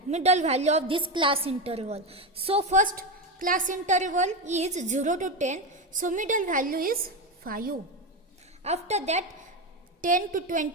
value of this class interval. So first class interval is 0 to 10, so middle value is 5. After that 10 to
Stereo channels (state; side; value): normal; both; correlation 0.15